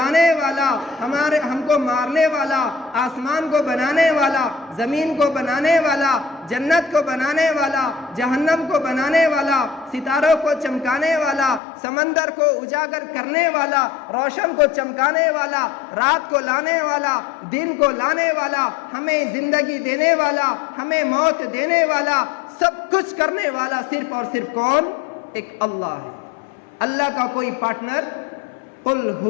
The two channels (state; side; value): drops out; right; at 11.6 s